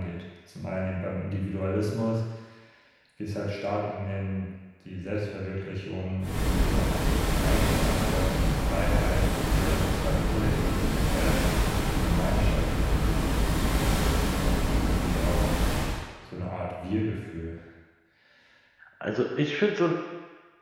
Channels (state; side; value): identical; both; correlation 1.00